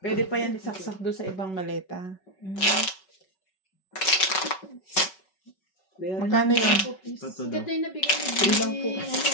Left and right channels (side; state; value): right; late; 5.3 ms